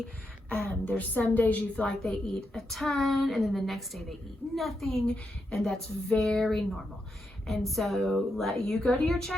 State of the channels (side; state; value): both; normal; correlation 0.83